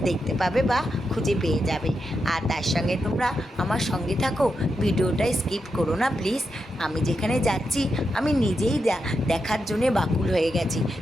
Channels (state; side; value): normal; both; correlation 0.86